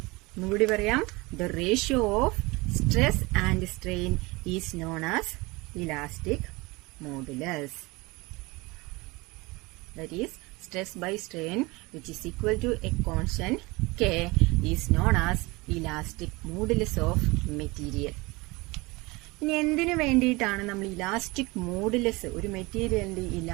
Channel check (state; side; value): quieter; left; 23.7 dB